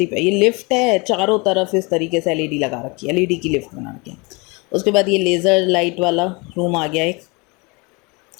प्यारी ये लिफ्ट है। चारों तरफ इस तरीके से एलईडी लगा रखी है, एलईडी की लिफ्ट बना रखी है। उसके बाद ये लेज़र लाइट वाला रूम आ गया, एक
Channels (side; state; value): right; quieter; 28.0 dB